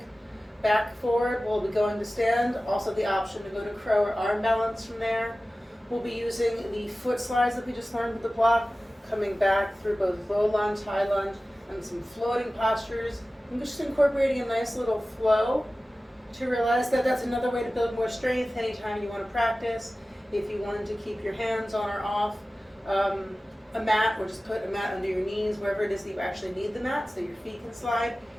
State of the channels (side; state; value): both; normal; correlation 0.96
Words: back forward. We'll be going to stand, also the option to go to crow or arm balance from there. We'll be using the foot slides that we just learned with the block, coming back through both low lunge, high lunge, and some floating postures. I'm just incorporating a nice little flow to realize that that's another way to build more strength anytime you want to practice. If you wanted to keep your hands on or off a mat, or just put a mat under your knees, wherever it is that you actually need the mat so your feet can slide,